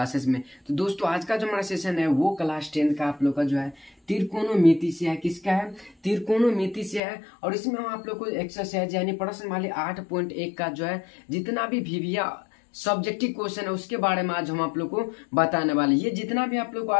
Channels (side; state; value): right; drops out; at 7.0 s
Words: में। तो दोस्तों आज का जो हमारा सेशन है वो क्लास 10 का आप लोग का जो है त्रिकोणमिति से है। किसका है? त्रिकोणमिति से है। और इसमें हम आप लोग को एक्सरसाइज यानी प्रश्न वाले 8.1 का जो है जितना भी VBA सब्जेक्टिव क्वेश्चन है उसके बारे में आज हम आप लोग को बताने वाले। ये जितना भी आप लोग को